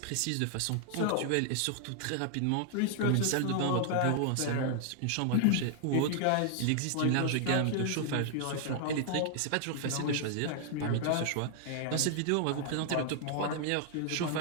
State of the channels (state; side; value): different; both; correlation 0.00